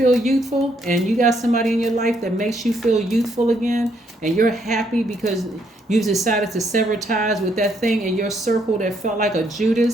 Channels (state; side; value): normal; both; correlation 0.72